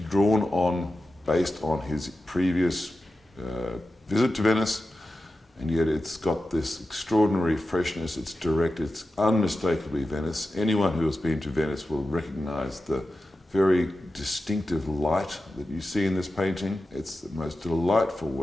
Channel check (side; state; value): both; normal; correlation 0.93